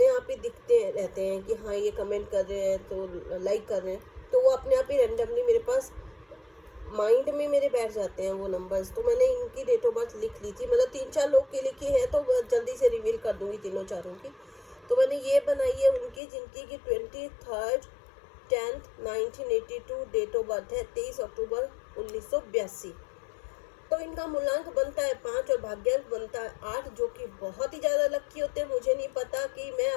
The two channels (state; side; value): drops out; right; at 16.2 s